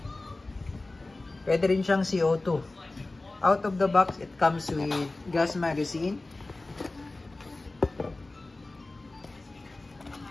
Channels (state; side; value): quieter; right; 3.1 dB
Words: pwede rin siyang CO2. Out of the box, it comes with gas magazine.